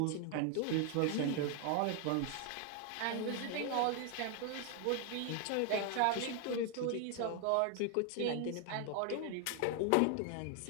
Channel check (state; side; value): different; both; correlation 0.00